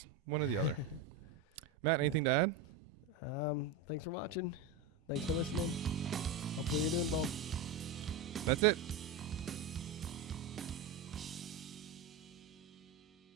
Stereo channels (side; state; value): left; quieter; 4.3 dB